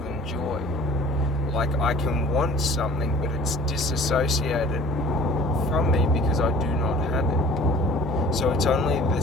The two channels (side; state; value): both; normal; correlation 0.48